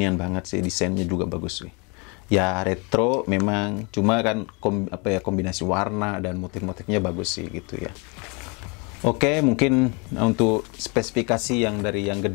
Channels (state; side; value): quieter; right; 31.7 dB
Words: banget sih, desainnya juga bagus sih. Ya retro memang, cuma kan kombinasi warna dan motif-motifnya bagus sih gitu ya. Oke, mungkin untuk spesifikasi yang dari yang